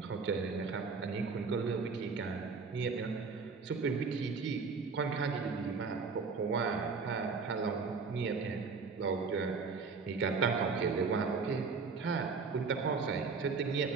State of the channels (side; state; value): left; quieter; 4.8 dB